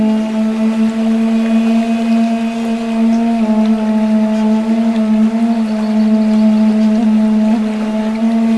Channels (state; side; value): identical; both; correlation 1.00